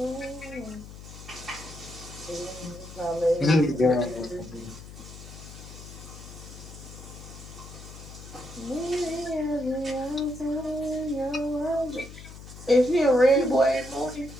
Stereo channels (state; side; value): noise; left; hum, 14 dB below the sound